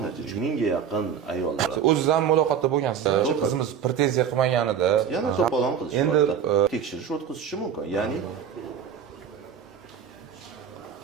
3000 ga yaqin ayollar. O'ziz ham muloqotda bo'lgansiz. Qizimiz pretenziya qilmaganida yana to'polon qilish endi tekshirish o'tkazishi mumkin. Ya'ni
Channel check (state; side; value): quieter; left; 7.9 dB